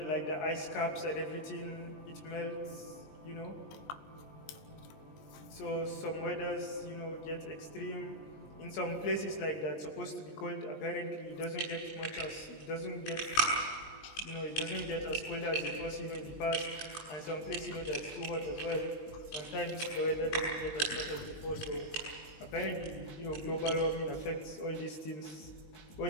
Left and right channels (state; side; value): late; right; 20 ms